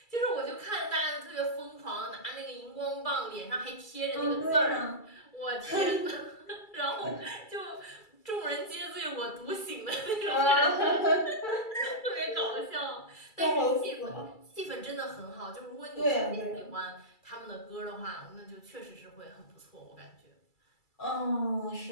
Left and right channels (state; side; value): late; right; 2.3 ms